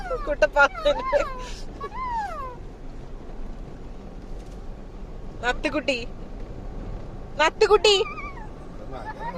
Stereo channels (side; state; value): both; identical; correlation 1.00